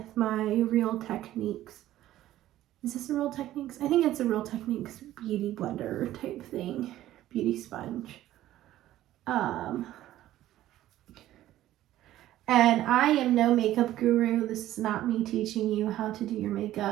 my Real Techniques. Is this a Real Techniques? I think it's a Real Techniques beauty blender type thing. Beauty sponge. And I am no makeup guru. This is not me teaching you how to do your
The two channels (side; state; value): left; quieter; 13.9 dB